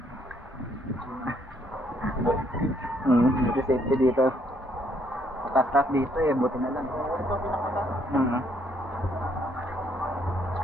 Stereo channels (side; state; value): both; normal; correlation 0.68